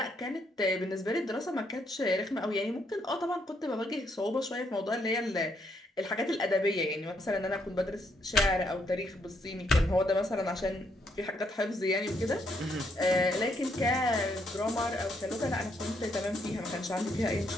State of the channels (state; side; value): normal; both; correlation 0.74